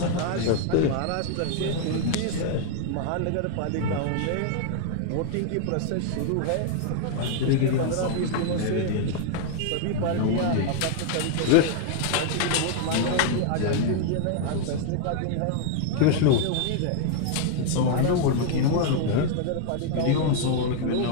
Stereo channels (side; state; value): both; different; correlation 0.00